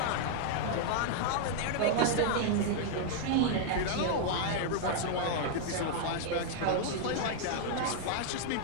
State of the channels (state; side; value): different; both; correlation 0.00